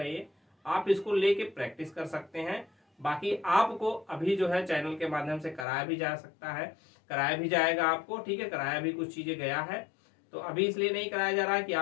है ये। आप इसको लेके प्रैक्टिस कर सकते हैं। बाकी आपको अभी जो है चैनल के माध्यम से कराया भी जा सकता है, कराया भी जाएगा आपको। ठीक है, कराया भी कुछ चीजें गया है, तो अभी इसलिए नहीं कराया जा रहा है कि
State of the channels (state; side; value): drops out; right; at 5.7 s